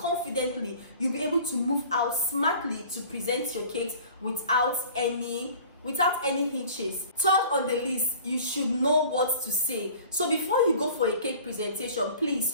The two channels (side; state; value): both; inverted; correlation -0.45